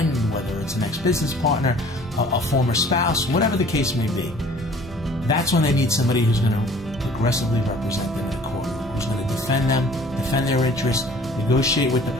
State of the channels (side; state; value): both; normal; correlation 0.52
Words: whether it's an ex-business partner, a former spouse, whatever the case may be. That's when they need somebody who's going to aggressively represent them in a courtroom, who's going to defend them, defend their interests, negotiate with the